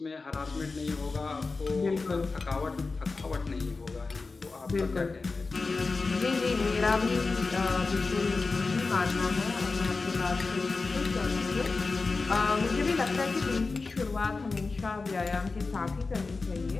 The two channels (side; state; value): right; quieter; 4.0 dB